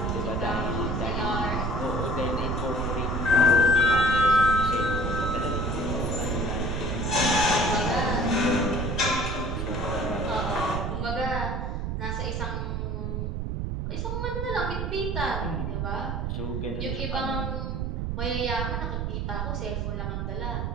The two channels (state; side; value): noise; right; rumble, 1 dB below the sound